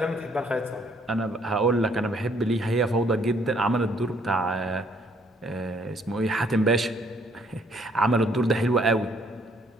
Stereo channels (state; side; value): normal; both; correlation 0.65